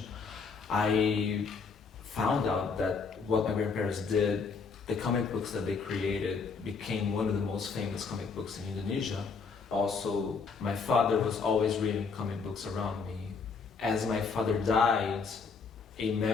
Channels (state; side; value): quieter; right; 5.0 dB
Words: I found out that what my grandparents did, the comic books that they created became one of the most famous comic books in Indonesia. Also, my father was always reading comic books around me. As my father died, a